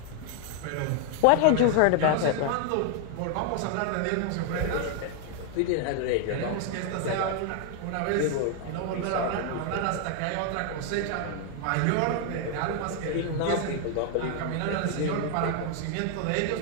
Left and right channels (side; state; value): both; different; correlation 0.00